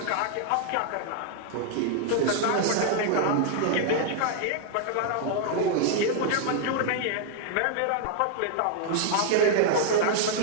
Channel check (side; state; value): both; different; correlation 0.00